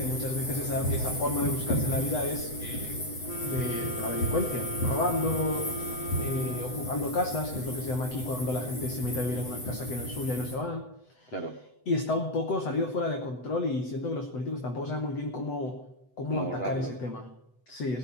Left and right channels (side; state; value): right; late; 8.0 ms